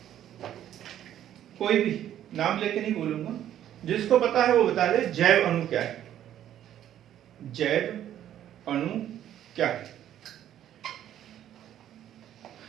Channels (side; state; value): left; quieter; 11.2 dB